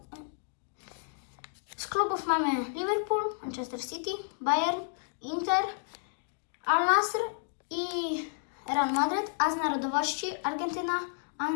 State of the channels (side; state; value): right; silent; digital silence